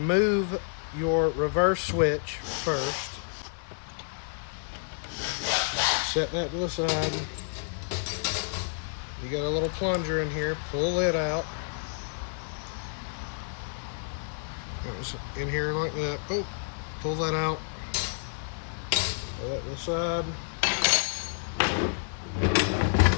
your reverse switch first. Set that to the side. You got a little plunger in here, pull it out. That was in here like that. Oh, pull that out. Put that to the side.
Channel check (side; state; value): right; silent; digital silence